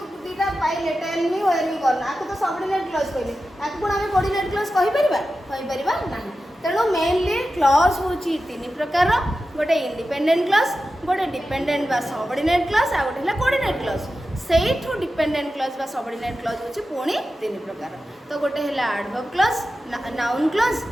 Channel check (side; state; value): both; normal; correlation 0.92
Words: दीटा पाइले टेल मी वेयर मी करना आको तो सबऑर्डिनेट क्लॉज कहले आको कोन आमे कोऑर्डिनेट क्लॉज कहि परिबा नाही तेणु मेनली क्लॉज होची तीन प्रकार गोटे इंडिपेंडेंट क्लॉज गोटे डिपेंडेंट बा सबऑर्डिनेट क्लॉज आ गोटे है coordinate clause Sethu dependent clause बा सबऑर्डिनेट क्लॉज होची पुणी तीन प्रकार तो गोटे है adverb clause noun clause